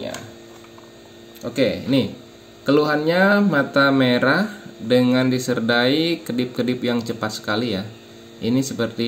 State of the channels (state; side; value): identical; both; correlation 1.00